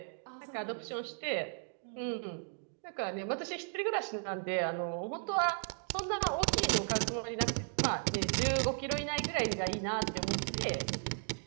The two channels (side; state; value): left; silent; 54 dB below the other